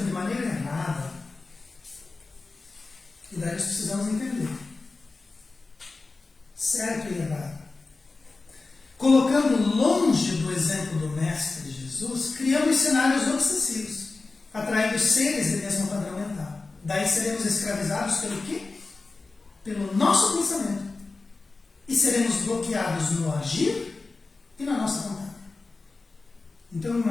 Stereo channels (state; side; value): quieter; right; 3.7 dB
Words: de maneira errada, e daí nós precisamos entender certo e errado. Colocando longe do exemplo do Mestre Jesus, criamos cenários obsessivos, atraindo seres de mesmo padrão mental. Daí seremos escravizados pelo quê? Pelo nosso pensamento. E seremos bloqueados no agir e na nossa vontade. Então